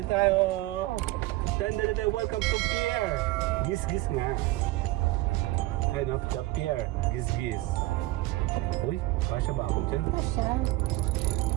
tayo. Welcome to pier. Gis-gis nga. Ayan o, the pier. Gis-gis. Uy, kasya ba ako dyan? Kasya.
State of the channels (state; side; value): quieter; left; 18.2 dB